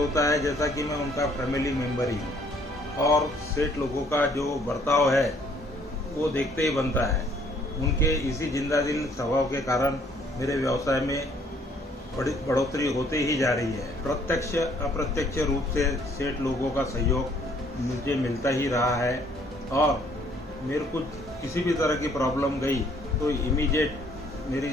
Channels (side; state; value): both; normal; correlation 0.63